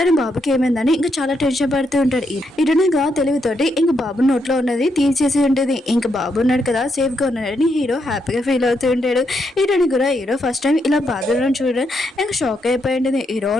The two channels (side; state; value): both; normal; correlation 0.79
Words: బాబుకి ఏమైందని ఇంకా చాలా టెన్షన్ పడుతూ ఉంటాడు. హీరోయిన్ గా తెలివితోటి ఇంకా బాబు నోట్లో ఉన్నది తీసేసి ఉంటుంది. ఇంకా బాబు ఉన్నాడు కదా సేఫ్ గా ఉన్నాడని హీరో హ్యాపీగా ఫీల్ అవుతూ ఉంటాడు. హీరోని కూడా హీరో ఫస్ట్ టైం ఇలా బాధలను చూడడం ఇంకా షాక్ అయిపోయింది. హీరో